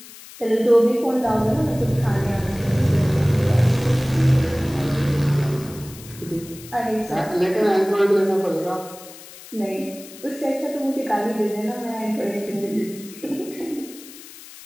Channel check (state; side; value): noise; left; hiss, 18 dB below the sound